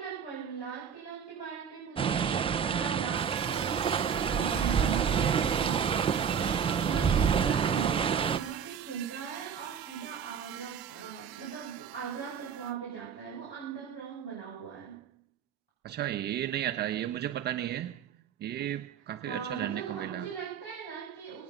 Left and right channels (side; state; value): left; quieter; 7.5 dB